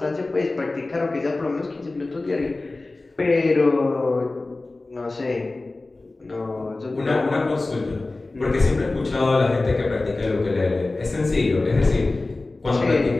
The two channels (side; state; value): right; quieter; 3.2 dB